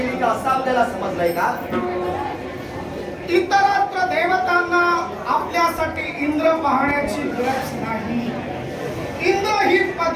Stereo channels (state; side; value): identical; both; correlation 1.00